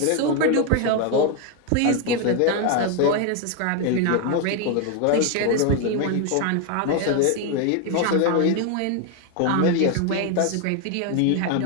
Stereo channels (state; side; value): different; both; correlation 0.01